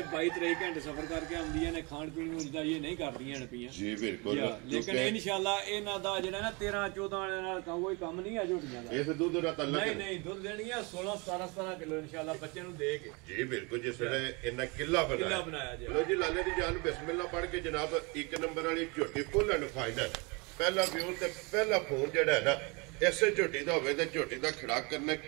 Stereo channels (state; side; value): quieter; left; 29.1 dB